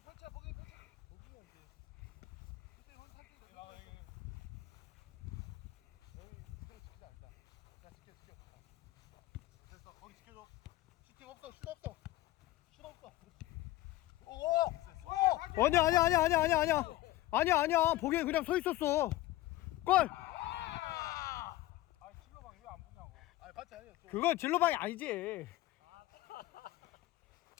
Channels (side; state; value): right; quieter; 16.5 dB